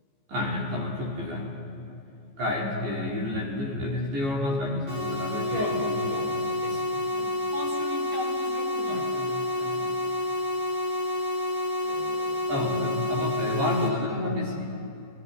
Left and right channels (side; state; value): left; late; 15 ms